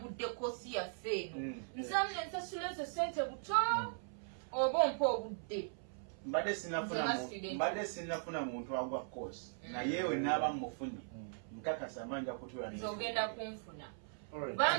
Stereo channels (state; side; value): silent; left; 52 dB below the other